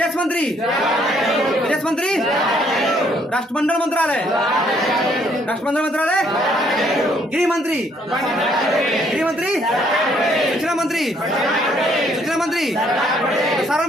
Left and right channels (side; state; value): both; normal; correlation 0.67